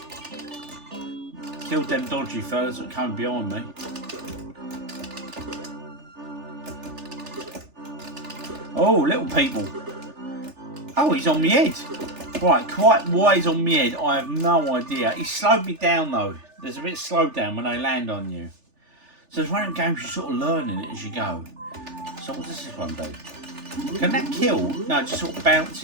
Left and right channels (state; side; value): late; left; 3.4 ms